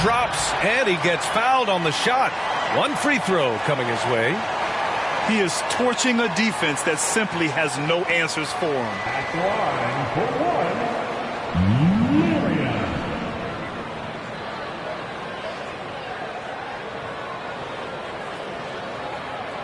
drops, and he gets fouled on the shot. 1 free throw coming his way. He is torching a defense that simply has no answers for him. At the line for 1, Marion.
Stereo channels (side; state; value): both; identical; correlation 1.00